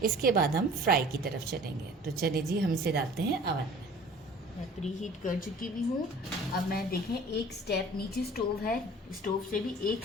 इसके बाद हम फ्राई की तरफ चलेंगे। तो चलिए जी, हम इसे डालते हैं अवन में। मैं प्री हीट कर चुकी भी हूँ। अब मैं देखें, एक स्टेप नीचे स्टोव है, स्टोव से भी एक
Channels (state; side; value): normal; both; correlation 0.46